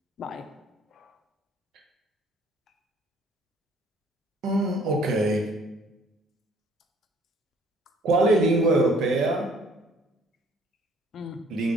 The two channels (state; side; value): normal; both; correlation 0.58